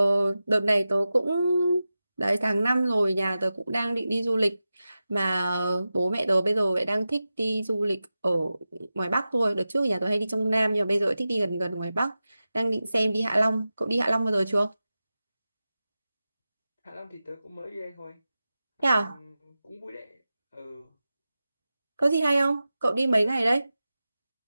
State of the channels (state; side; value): inverted; both; correlation -0.94